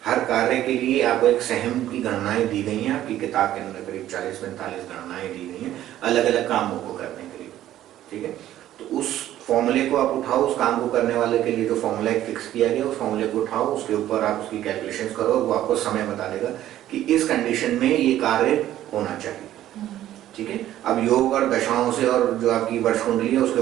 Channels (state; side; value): quieter; left; 12.9 dB